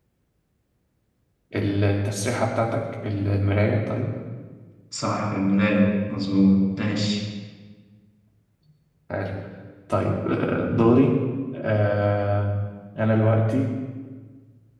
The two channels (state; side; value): identical; both; correlation 1.00